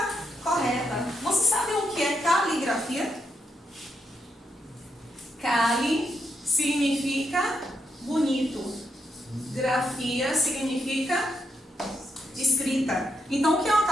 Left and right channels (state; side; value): normal; both; correlation 0.81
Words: correta. Você sabe o que é caligrafia? Cali significa bonito. Grafia significa escrita. Então, o que é uma